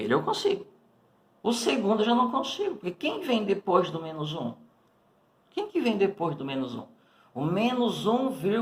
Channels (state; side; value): identical; both; correlation 1.00